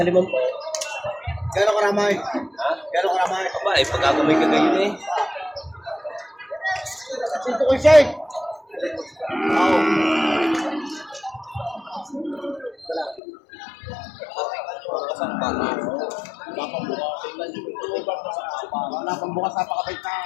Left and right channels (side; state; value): right; drops out; at 13.2 s